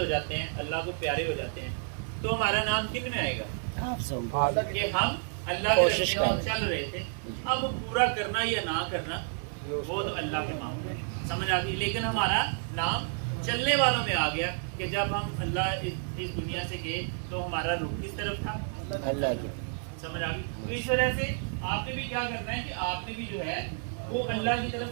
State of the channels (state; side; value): silent; left; 58 dB below the other